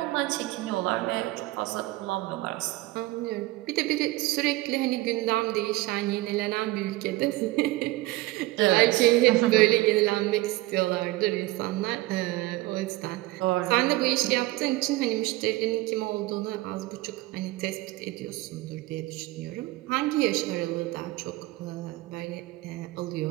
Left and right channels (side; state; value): left; quieter; 19.1 dB